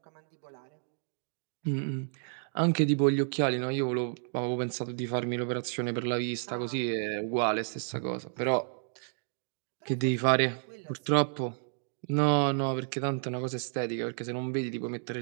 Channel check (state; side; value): silent; left; digital silence